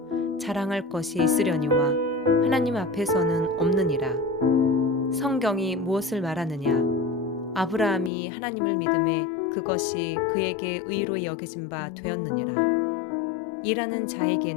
자랑할 것이 있으려니와 하나님 앞에서는 없느니라. 성경이 무엇을 말하느냐? 아브라함이 하나님을 믿음에 그것이 그에게 의로 여겨진 바 되었느니라. 일하는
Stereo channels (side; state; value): right; drops out; at 8.1 s